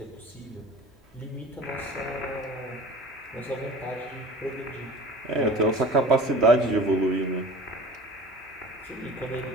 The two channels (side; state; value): both; normal; correlation 0.40